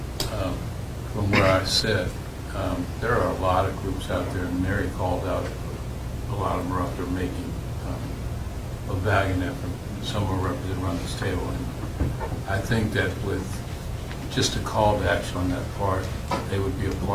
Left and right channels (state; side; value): identical; both; correlation 1.00